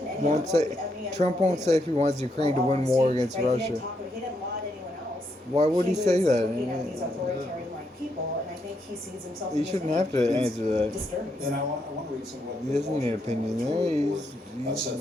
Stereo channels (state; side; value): normal; both; correlation 0.78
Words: any Won't other- say. any other Trump won't leader. say if he wants Ukraine to win war against Right, he didn't Russia. talk- he didn't lie to anyone else. Why would he say was that? looking at these authoritarian-like people, and I think he sees himself. You in the shouldn't same. have to answer that. Disturbing. And I want to read some of what He the doesn't need an Washington opinion there. Report He's- said